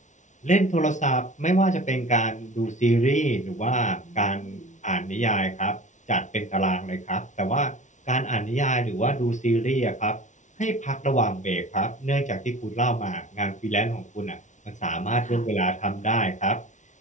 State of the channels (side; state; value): right; late; 0.36 ms